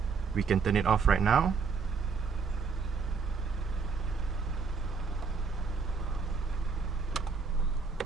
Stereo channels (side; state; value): left; quieter; 5.2 dB